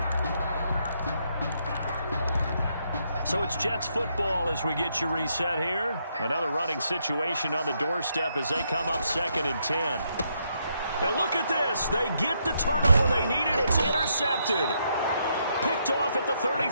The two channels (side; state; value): both; inverted; correlation -0.77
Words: So it's Jets football as we get you reset here. Another running situation on the doorstep as they come up 2nd and 10. And look at this. They get the turnover they needed. It's intercepted. Picked off at the